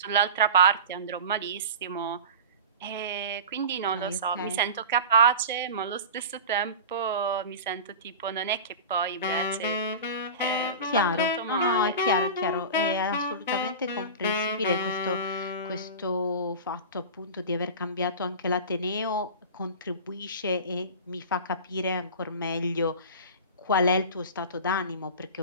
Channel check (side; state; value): both; inverted; correlation -0.32